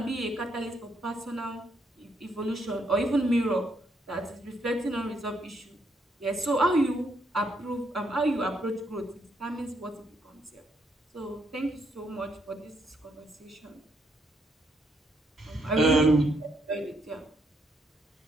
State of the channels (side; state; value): both; normal; correlation 0.75